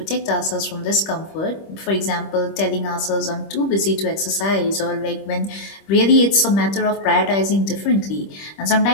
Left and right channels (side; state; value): right; late; 25 ms